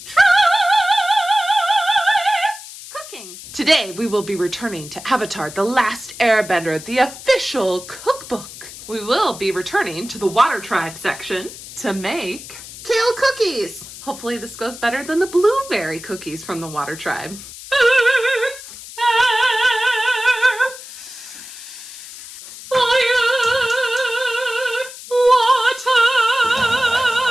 tries cooking. Today we will be returning to Avatar The Last Airbender, the official cookbook. We will be returning to the water tribe section to make Kale Cookies. Hopefully this goes better than the blueberry cookies from the water tribe. Earth, air, fire, water.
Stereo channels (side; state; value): left; noise; hiss, 14 dB below the sound